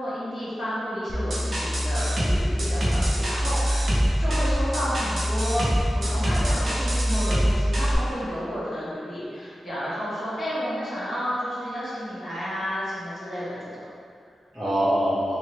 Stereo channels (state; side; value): normal; both; correlation 0.95